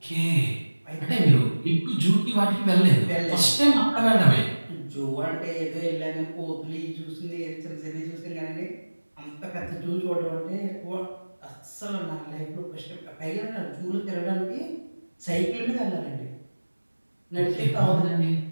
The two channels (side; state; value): both; inverted; correlation -1.00